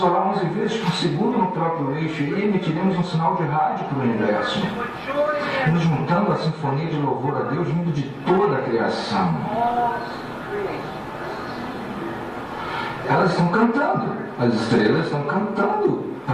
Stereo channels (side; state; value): both; identical; correlation 1.00